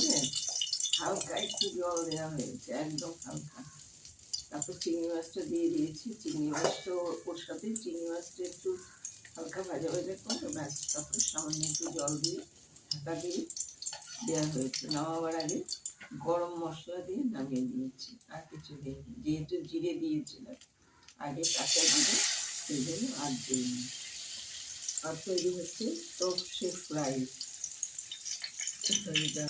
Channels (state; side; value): identical; both; correlation 1.00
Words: হালকা একটু জল দেওয়া হয়েছে, একদম হালকা। তারপর চিংড়ি মাছটা দিয়ে দিয়েছি, চিংড়ি মাছটা ওর সাথে চিংড়ি মাছটা একটু হালকা ভাজা ভাজা করে ব্যাস, তারপরে সামান্য একটু জল দিয়ে ঢাকা দিয়ে দেওয়া হয়েছে। নামাবার আগে গরম মশলা দিয়ে নামিয়ে দিয়েছি, আর কিছু দিইনি, যেহেতু জিরে দিয়েছিলাম আগে কাঁচা জিরে, সেই জন্য আর দিইনি। আর তৈরি হচ্ছে সর্ষে ফ্রাই।